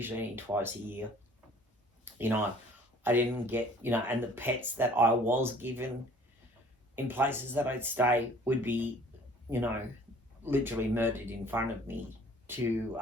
only twice a year. You know, I didn't get, you know, and the pets that I was given in places that I'd stay would be, you know, literally murdered in front of me to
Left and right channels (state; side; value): normal; both; correlation 0.53